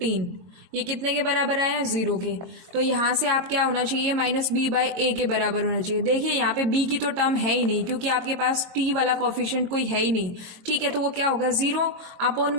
ये कितने के बराबर आया, जीरो के। तो यहाँ से आप क्या होना चाहिए, माइनस बी बाय ए के बराबर होना चाहिए। देखिए यहाँ पे बी की तो टर्म है ही नहीं, क्योंकि आपके पास टी वाला कोफिशिएंट कोई है ही नहीं। ठीक है, तो वो क्या होगा, जीरो अपॉन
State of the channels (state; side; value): late; left; 22 ms